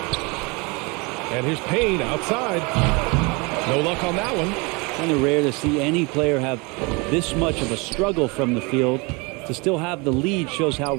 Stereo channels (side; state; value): left; quieter; 28.1 dB